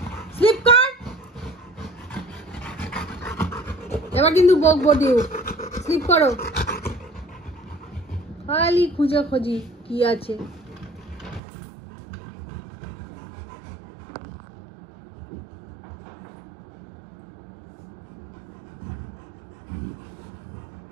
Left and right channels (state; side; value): drops out; left; at 11.4 s